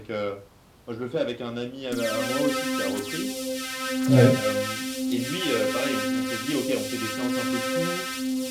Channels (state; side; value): identical; both; correlation 1.00